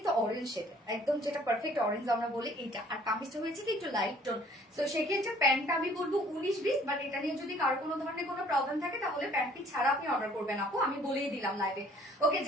অরেঞ্জ শেড, একদম যেটা পারফেক্ট অরেঞ্জ আমরা বলি এটা, আর কামিজটা হয়েছে কি একটু লাইট টোন। তো সেক্ষেত্রে প্যান্টটা আমি বলবো 19-20, বাট এটা নিয়ে যদি কারো কোনো ধরনের কোনো প্রবলেম থাকে তাহলে প্যান্টটি ছাড়া আপনি অর্ডার করবেন আপু, আমি বলেই দিলাম লাইভে। ওকে,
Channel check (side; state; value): both; normal; correlation 0.57